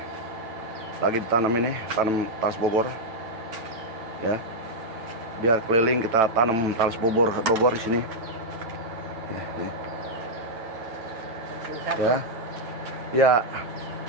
lagi ditanam ini, tanam talas Bogor. Ya. Biar keliling kita tanam talas Bogor di sini. Nih. Ya. Ya.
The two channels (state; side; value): late; left; 9.4 ms